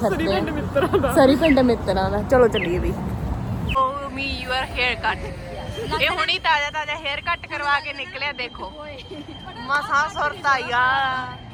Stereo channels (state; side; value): identical; both; correlation 1.00